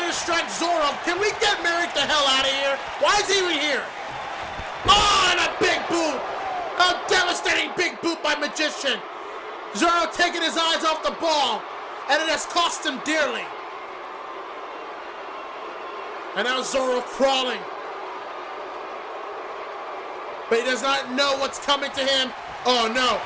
to strike Zoro. Can we get Merrick the hell out of here? Why is he even here? Oh, and a big boot. A devastating big boot by Magician. Zoro taking his eyes off the ball. And it has cost him dearly. And now Zoro crawling. But he does not know what's coming to him. Oh no,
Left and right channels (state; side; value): identical; both; correlation 1.00